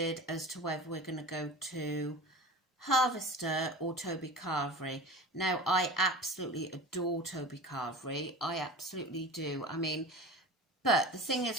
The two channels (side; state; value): both; normal; correlation 0.34